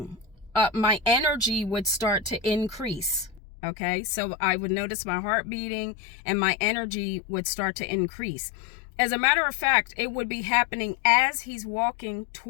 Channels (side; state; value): right; drops out; at 3.4 s